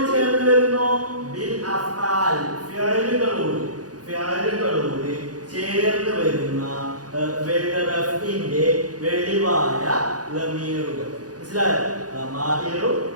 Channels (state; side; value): late; left; 0.68 ms